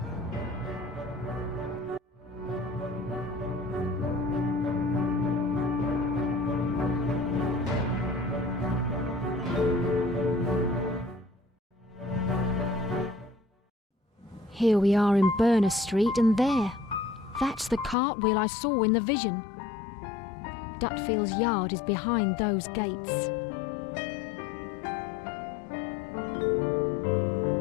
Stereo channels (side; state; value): right; drops out; at 17.9 s